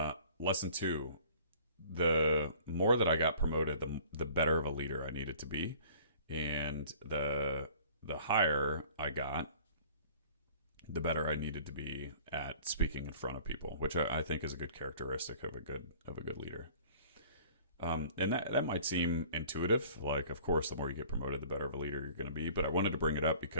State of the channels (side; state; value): both; inverted; correlation -0.49